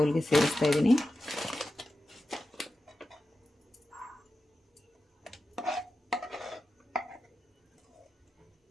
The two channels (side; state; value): both; normal; correlation 0.92